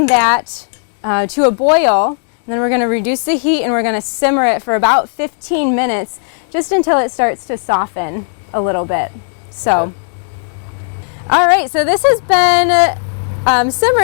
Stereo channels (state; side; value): silent; right; 63 dB below the other